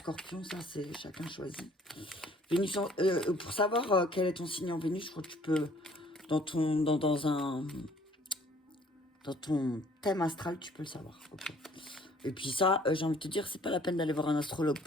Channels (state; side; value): normal; both; correlation 0.58